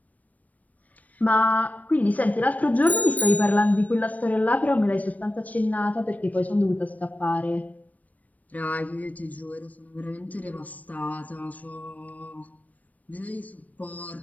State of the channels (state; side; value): late; right; 0.072 ms